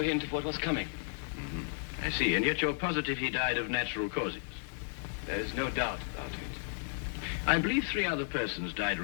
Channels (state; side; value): silent; right; digital silence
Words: hint of what was coming. I see, and yet you're positive he died of natural causes. There is no doubt about it. I believe 3 other persons died